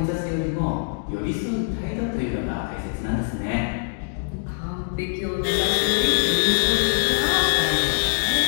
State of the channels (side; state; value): right; silent; digital silence